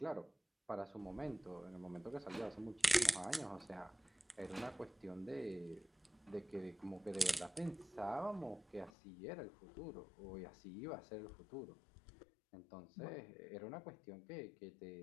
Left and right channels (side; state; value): right; drops out; at 8.9 s